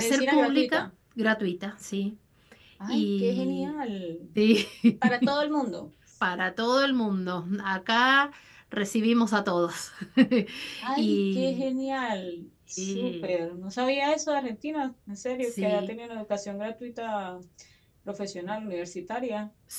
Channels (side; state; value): both; identical; correlation 1.00